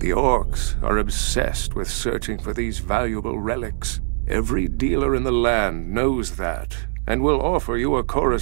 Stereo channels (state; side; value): silent; left; digital silence